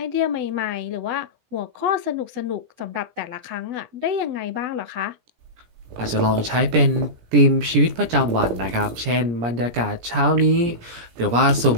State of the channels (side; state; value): left; late; 17 ms